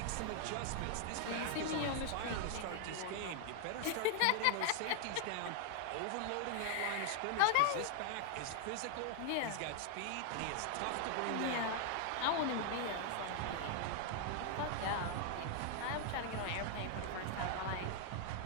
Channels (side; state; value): both; different; correlation 0.00